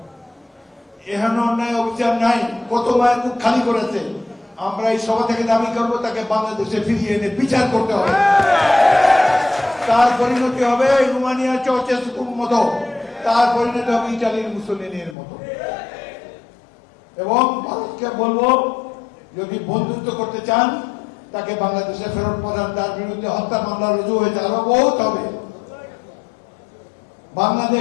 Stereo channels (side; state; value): right; drops out; at 15.2 s